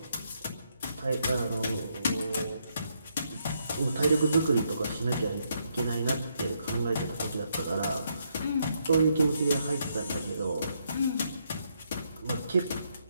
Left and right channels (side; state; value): both; inverted; correlation -0.76